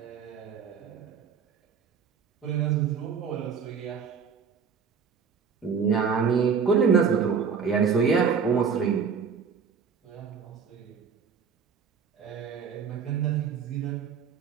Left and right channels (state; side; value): quieter; left; 6.3 dB